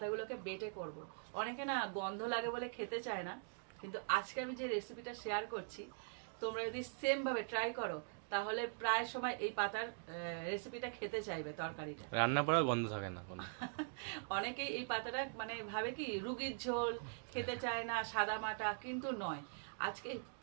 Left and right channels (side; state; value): left; silent; digital silence